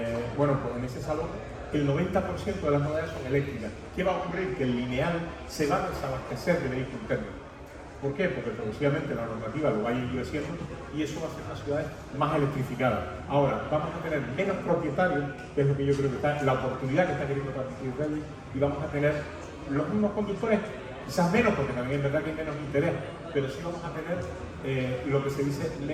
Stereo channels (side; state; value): both; identical; correlation 1.00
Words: Bueno, pues en ese salón el 90% de las novedades son eléctricas. ¿Qué va a ocurrir? Que el lineal se va a desabastecer de vehículos térmicos. ¿Por qué? Porque progresivamente la normativa lo va a ir endureciendo y eso va a hacer las ciudades más electrificadas. Ahora, vamos a tener menos propietarios, que es lo que yo creo que está, la oportunidad que está queriendo transmitir Rey, y vamos a tener los mismos conductores, quizás menos, porque también es verdad que hay menos interés, pero sí vamos a tener lo que se dice